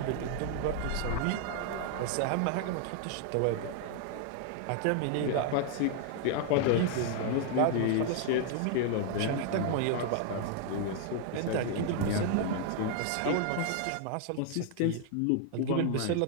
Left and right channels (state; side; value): different; both; correlation 0.00